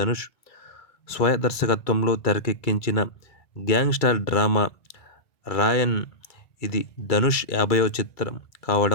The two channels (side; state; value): right; late; 2.3 ms